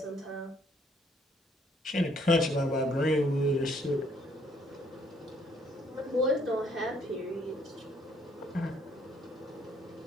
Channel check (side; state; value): both; normal; correlation 0.65